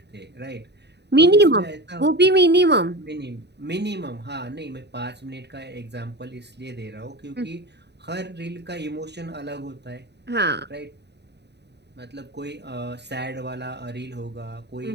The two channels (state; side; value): late; left; 0.49 ms